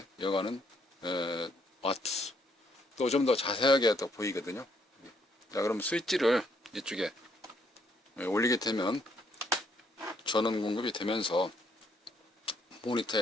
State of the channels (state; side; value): normal; both; correlation 0.71